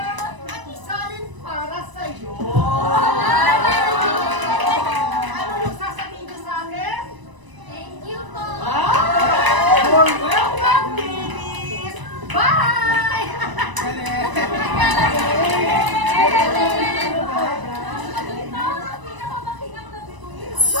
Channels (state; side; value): late; left; 1.0 ms